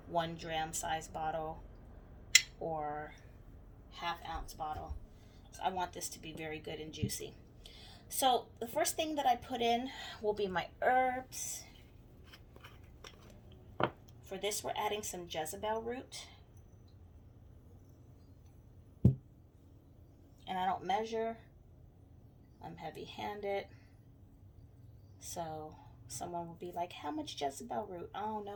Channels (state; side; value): identical; both; correlation 1.00